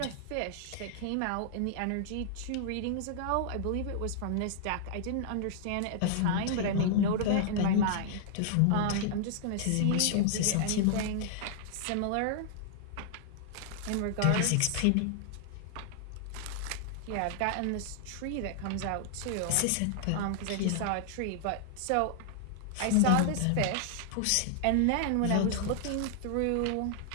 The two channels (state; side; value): different; both; correlation -0.01